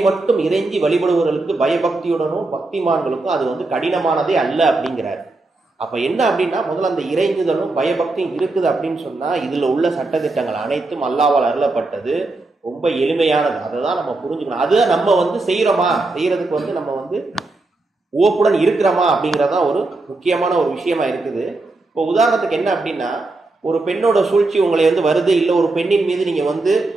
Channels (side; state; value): left; quieter; 3.2 dB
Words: மட்டும் இறைஞ்சி வழிபடுவர்களுக்கு பயபக்தியுடனும் பக்திமான்களுக்கும் அது வந்து கடினமானதே அல்ல அப்படிங்கிறார். அப்ப என்ன அப்படின்னா, முதல்ல அந்த இறைஞ்சுதலும் பயபக்தியும் இருக்குது அப்படின்னு சொன்னா இதுல உள்ள சட்டத்திட்டங்கள் அனைத்தும் அல்லாஹ்வால் அருளப்பட்டது, ரொம்ப எளிமையானது. அதை தான் நம்ம புரிஞ்சுக்கணும். அதை நம்ம வந்து செய்யறோமா, செய்யறதுக்கு வந்து நம்ம வந்து ஓப்புடன் இருக்கிறோமா அப்படிங்கிறதான் ஒரு முக்கியமான ஒரு விஷயமா இருக்குது. இப்போ உதாரணத்துக்கு என்ன அப்படின்னா, ஒரு பெண்ணோட சூழ்ச்சி உங்களை வந்து வருது, இல்லை ஒரு பெண்ணின் மீது நீங்க வந்து